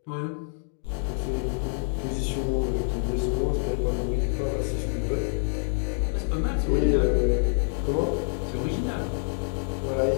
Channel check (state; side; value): silent; right; digital silence